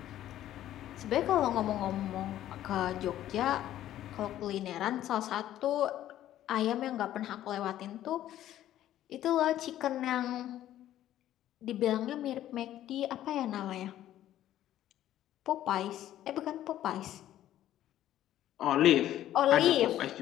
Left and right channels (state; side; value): quieter; right; 12.6 dB